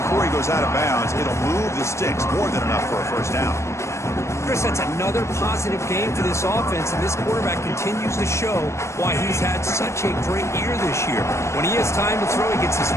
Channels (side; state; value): right; late; 0.14 ms